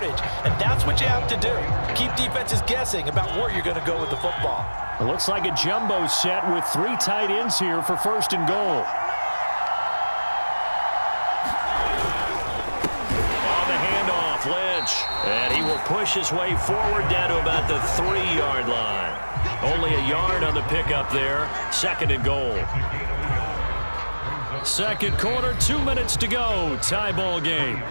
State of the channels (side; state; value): both; inverted; correlation -1.00